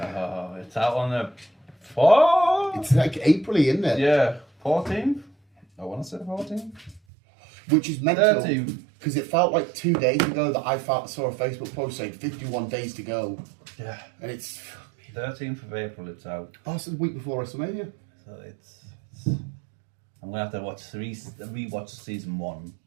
It's out on the 4th? It's like April-y, isn't it? Yeah, 14th? I want to say 14th. Which is mental. 13th. Because it felt like 2 days ago that I saw a Facebook post saying 51 days to go. Yeah. And it's... 13th of April it's out. Oh, it's the week before WrestleMania. So it's I'm going to have to rewatch season 1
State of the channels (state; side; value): drops out; left; at 7.0 s